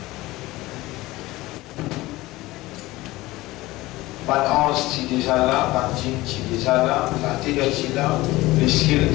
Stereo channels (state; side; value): quieter; right; 19.0 dB